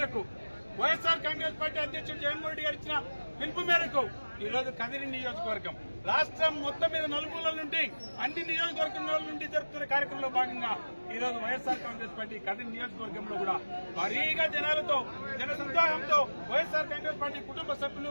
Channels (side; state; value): both; inverted; correlation -1.00